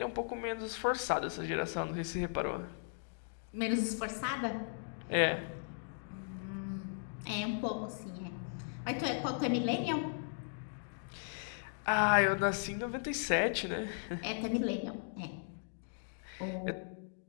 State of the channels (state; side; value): silent; right; digital silence